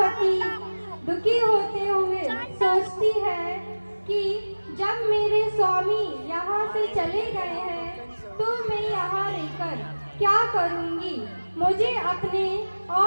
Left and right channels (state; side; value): inverted; both; correlation -1.00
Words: दुखी होते हुए सोचती है कि जब मेरे स्वामी यहाँ से चले गए हैं तो मैं यहाँ रहकर क्या करूँगी। मुझे अपने